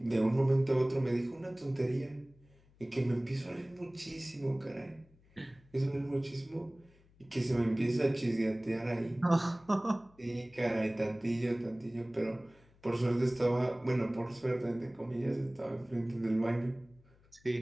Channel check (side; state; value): left; noise; hum, 29 dB below the sound